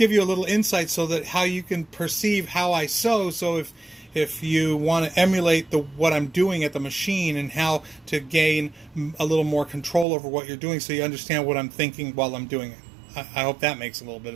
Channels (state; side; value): drops out; left; at 10.1 s